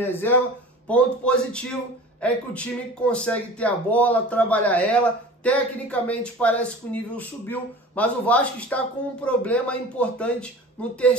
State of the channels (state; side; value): normal; both; correlation 0.39